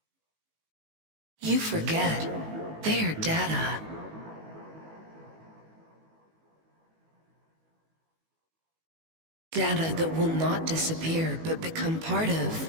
You forget. They are data. Data that will not disappear, but become part of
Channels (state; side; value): late; left; 19 ms